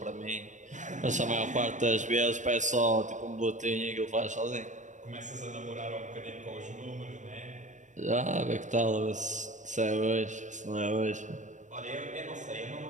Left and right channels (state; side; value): late; left; 0.35 ms